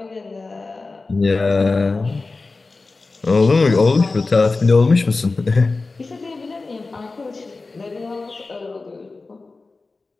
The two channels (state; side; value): quieter; right; 3.7 dB